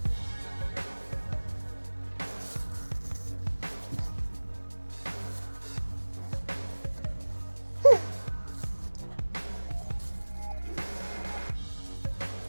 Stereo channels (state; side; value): inverted; both; correlation -1.00